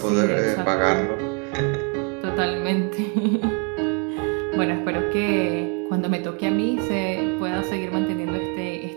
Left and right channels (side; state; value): left; quieter; 35.7 dB